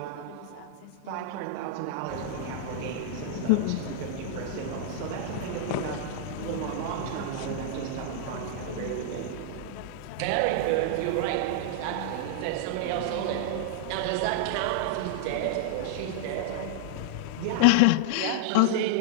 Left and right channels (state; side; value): different; both; correlation -0.01